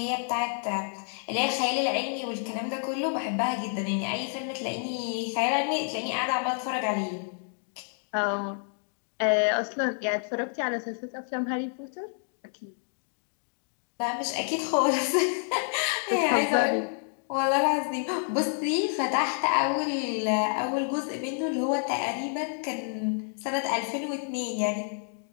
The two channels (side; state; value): right; silent; 59 dB below the other